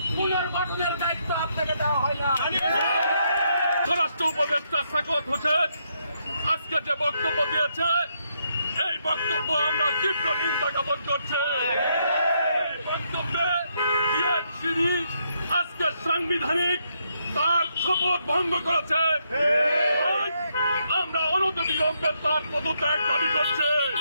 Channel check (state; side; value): inverted; both; correlation -0.77